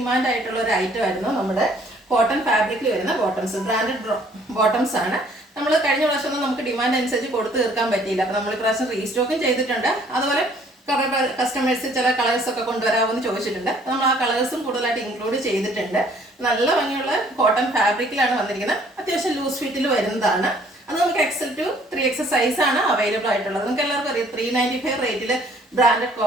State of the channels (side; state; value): both; normal; correlation 0.59